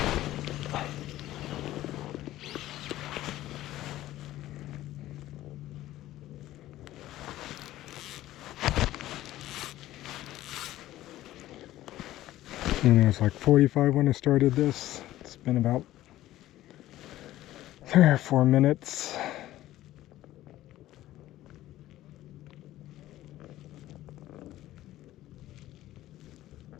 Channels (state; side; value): quieter; right; 14.8 dB